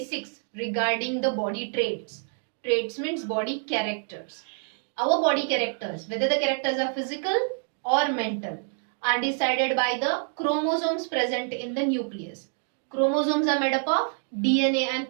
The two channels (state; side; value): silent; left; 55 dB below the other